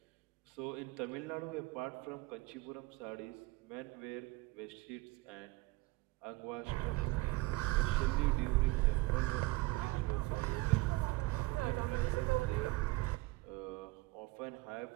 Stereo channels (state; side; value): quieter; left; 21.7 dB